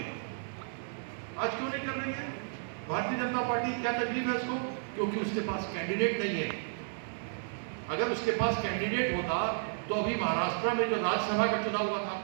आज क्यों नहीं कर रही है भारतीय जनता पार्टी? क्या तकलीफ है उसको? क्योंकि उसके पास कैंडिडेट नहीं है। अगर उसके पास कैंडिडेट होता तो अभी महाराष्ट्र में जो राज्यसभा का चुनाव हुआ था,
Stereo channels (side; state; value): left; silent; digital silence